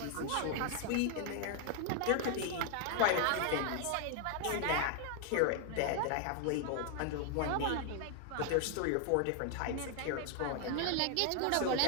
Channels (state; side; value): different; both; correlation 0.00